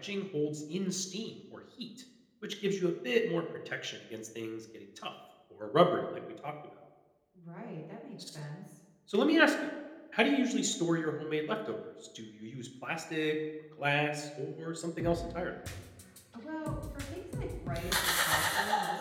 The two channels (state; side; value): identical; both; correlation 1.00